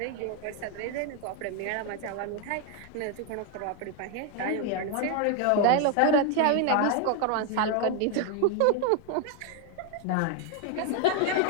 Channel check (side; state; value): both; different; correlation 0.00